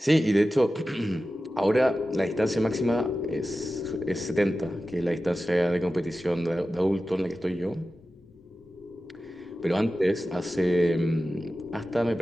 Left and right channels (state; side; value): normal; both; correlation 0.94